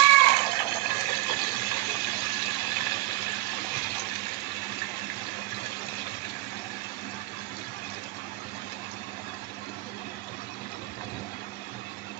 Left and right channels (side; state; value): left; quieter; 19.3 dB